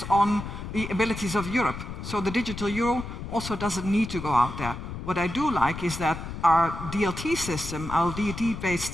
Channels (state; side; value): noise; left; rumble, 8 dB below the sound